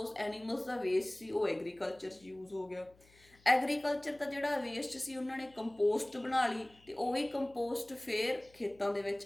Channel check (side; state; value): left; noise; hum, 29 dB below the sound